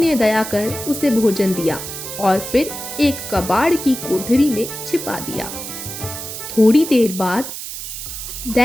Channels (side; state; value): right; noise; hiss, 8 dB below the sound